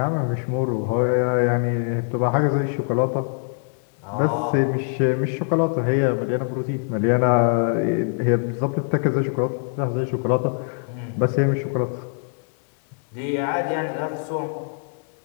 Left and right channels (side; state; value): right; silent; 57 dB below the other